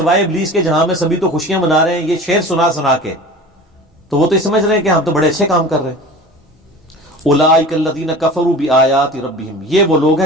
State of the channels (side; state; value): both; normal; correlation 0.38